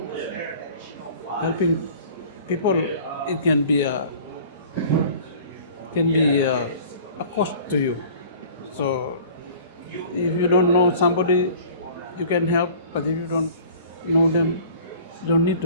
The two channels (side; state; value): both; inverted; correlation -0.46